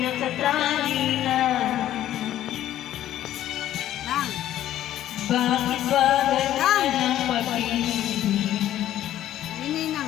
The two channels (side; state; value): right; quieter; 12.5 dB